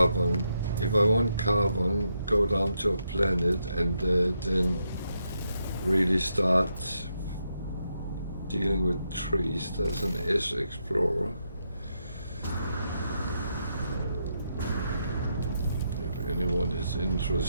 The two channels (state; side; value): inverted; both; correlation -0.81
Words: if I want carbon, go down to a planet and then really start dealing with trees. There's an S Explorer. If anyone is